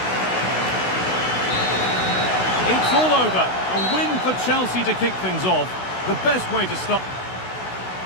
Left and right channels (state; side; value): late; right; 16 ms